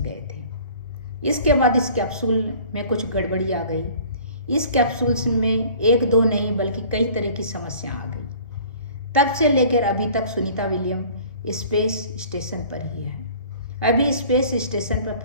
गए थे। इसके बाद इस कैप्सूल में कुछ गड़बड़ी आ गई। इस कैप्सूल में एक दो नहीं बल्कि कई तरह की समस्या आ गई। तब से लेकर अभी तक सुनीता विलियम स्पेस स्टेशन पर ही है। अभी स्पेस स्टेशन पर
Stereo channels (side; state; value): both; inverted; correlation -0.49